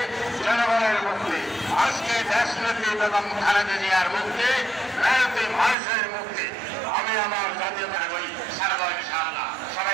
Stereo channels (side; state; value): left; drops out; at 5.8 s